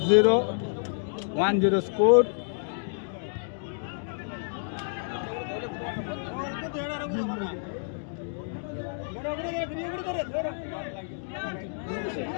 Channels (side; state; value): right; silent; digital silence